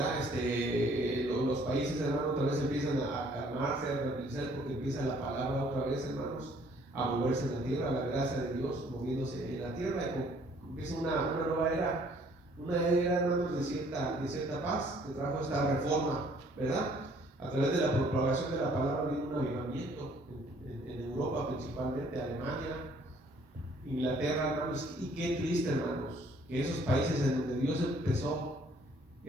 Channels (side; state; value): both; normal; correlation 0.60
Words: Los países, hermano, otra vez empiezan a calmarse, a tranquilizar, porque empieza la palabra otra vez, hermanos, a moverse en la tierra, la gracia de Dios moviéndose en la tierra, y empieza una nueva era, hermanos, de cierta paz, que trajo esta reforma, ¿verdad? A través de la propagación de la palabra vino un avivamiento en Europa, principalmente Alemania, Inglaterra, hermanos. Y qué triste, hermanos, que esos países en donde Dios empezó